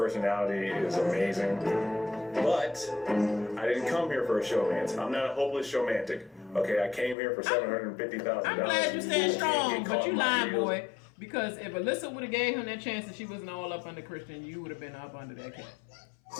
is amazing. But I didn't come here for a showmance. I'm not a hopeless showmantic. Okay, I came here for $750,000. I'm glad you stand strong, but you lying, boy. Because if Alyssa would have gave him that chance and she wasn't all up under Christian, you would have been up under that cat.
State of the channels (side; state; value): right; drops out; at 7.2 s